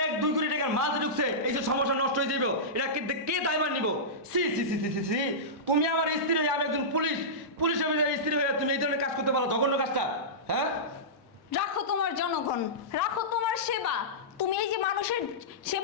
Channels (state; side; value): normal; both; correlation -0.16